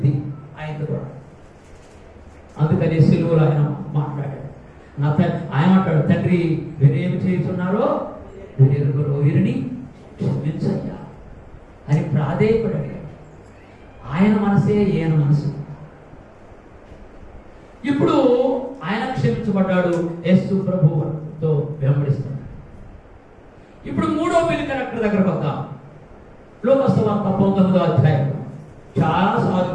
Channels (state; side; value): identical; both; correlation 1.00